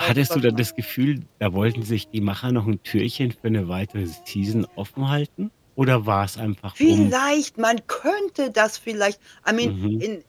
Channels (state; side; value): identical; both; correlation 1.00